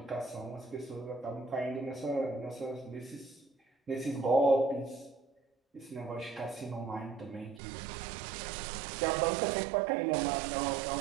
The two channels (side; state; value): left; drops out; at 7.6 s